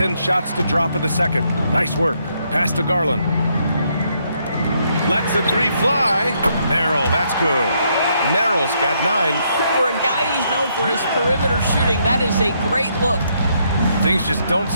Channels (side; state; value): both; inverted; correlation -0.74